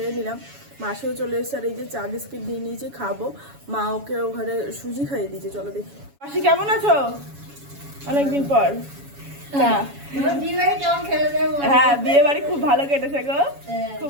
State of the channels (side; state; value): left; late; 7.1 ms